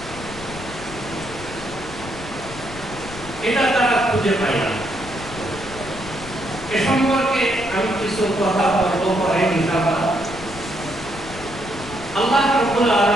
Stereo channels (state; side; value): noise; left; rumble, 14 dB below the sound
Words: এটা তারা খুঁজে পায় না। এ সম্পর্কে আমি কিছু কথা বলবো পরে ইনশাআল্লাহ। আল্লাহ রাব্বুল